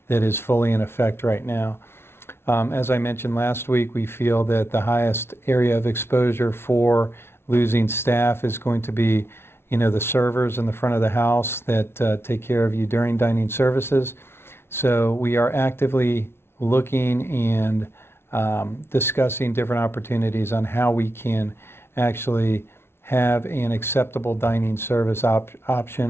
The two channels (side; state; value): right; late; 0.12 ms